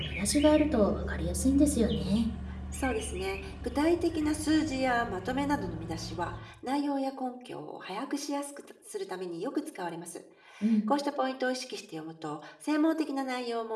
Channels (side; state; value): both; identical; correlation 1.00